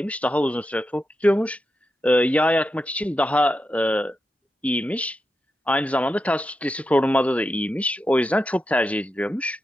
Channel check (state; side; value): normal; both; correlation 0.88